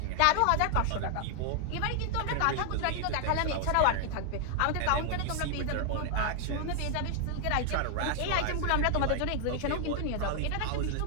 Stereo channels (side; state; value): both; different; correlation 0.00